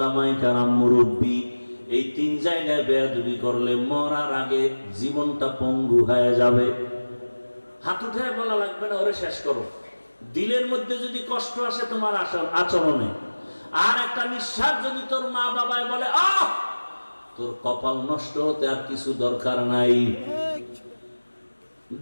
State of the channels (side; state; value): both; inverted; correlation -1.00